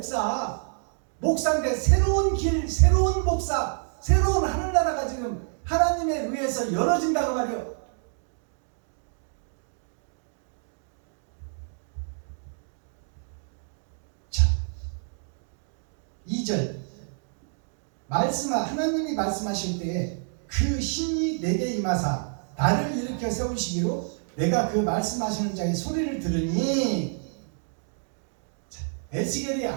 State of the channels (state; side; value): silent; left; 60 dB below the other